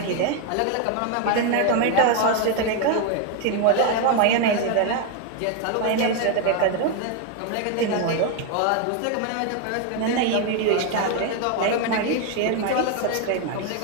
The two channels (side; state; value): both; different; correlation 0.01